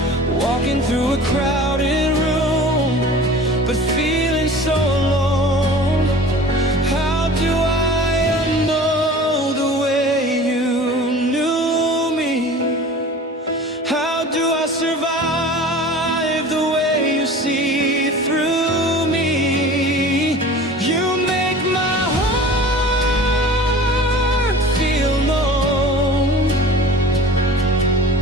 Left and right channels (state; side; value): normal; both; correlation 0.41